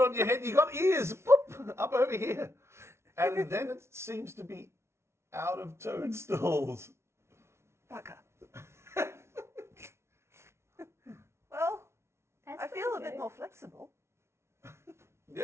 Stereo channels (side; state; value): left; late; 0.13 ms